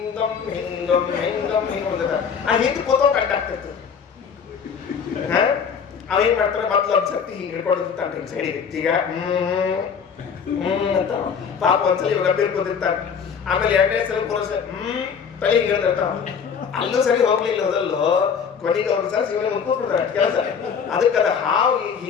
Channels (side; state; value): right; quieter; 6.7 dB